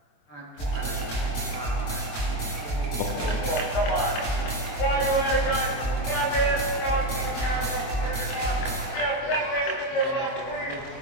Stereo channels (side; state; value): right; late; 25 ms